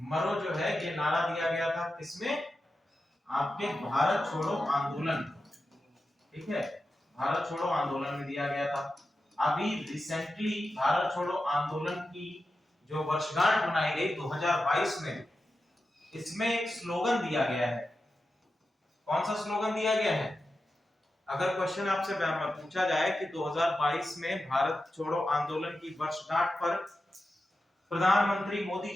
मरो जो है ये नारा दिया गया था किसमें, आपके भारत छोड़ो आंदोलन, ठीक है, भारत छोड़ो आंदोलन में दिया गया था। अभी रिसेंटली भारत छोड़ो आंदोलन की जो वर्षगांठ मनाई गई 2022 में, इसमें एक स्लोगन दिया गया है। कौन सा स्लोगन दिया गया है, अगर क्वेश्चन आपसे पूछा जाए कि 2022 में भारत छोड़ो आंदोलन की वर्षगांठ पर प्रधानमंत्री मोदी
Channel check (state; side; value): normal; both; correlation 0.91